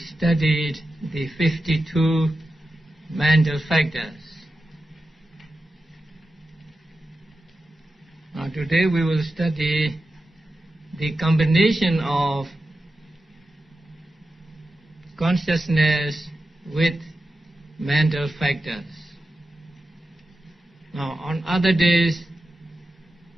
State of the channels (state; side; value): normal; both; correlation 0.91